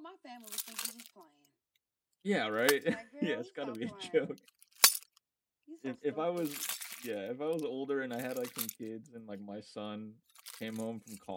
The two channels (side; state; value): both; identical; correlation 1.00